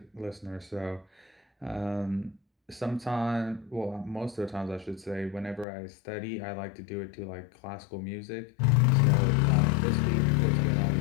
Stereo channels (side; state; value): right; drops out; at 5.7 s